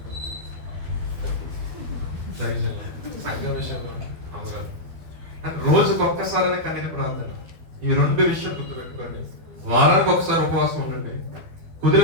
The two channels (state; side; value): late; left; 12 ms